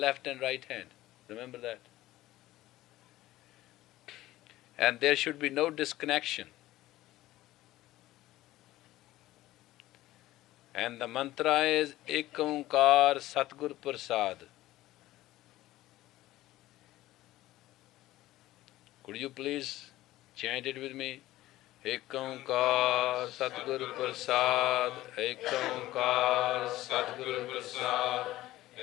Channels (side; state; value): right; quieter; 16.1 dB